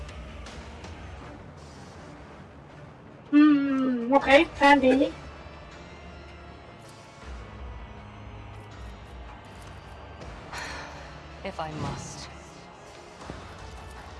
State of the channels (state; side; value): identical; both; correlation 1.00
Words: Okay, plan B. If I must.